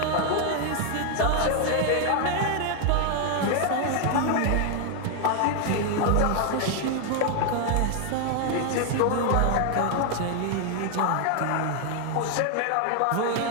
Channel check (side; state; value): both; different; correlation 0.00